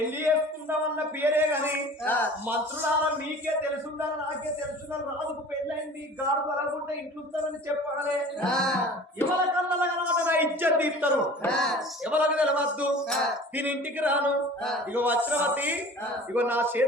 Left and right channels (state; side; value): normal; both; correlation 0.43